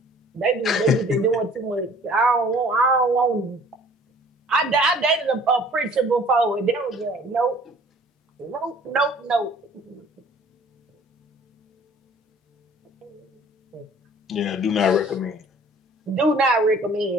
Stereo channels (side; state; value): both; normal; correlation 0.52